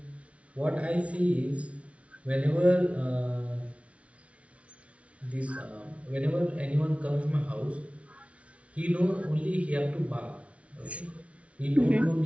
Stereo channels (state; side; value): late; left; 0.063 ms